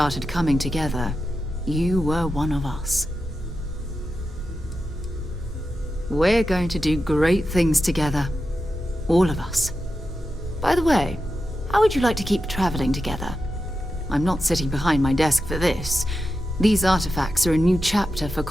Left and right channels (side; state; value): both; normal; correlation 0.90